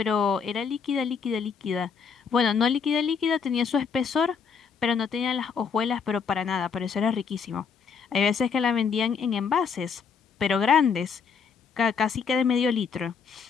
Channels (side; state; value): right; quieter; 6.1 dB